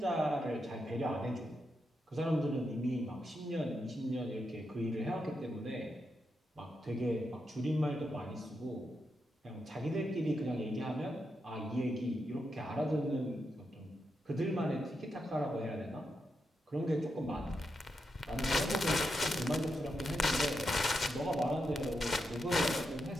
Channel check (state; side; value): normal; both; correlation 0.85